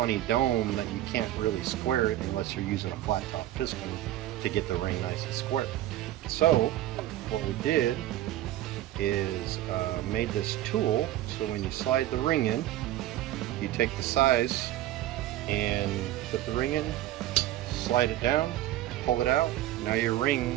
dome that you can't really square it unless you're using a flat top piston to get the ring nice and square. So what we did is made this tool so when you slide the ring in, you take the size and put the ring in, slide it down, pull it out. Now your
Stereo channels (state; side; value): quieter; left; 14.0 dB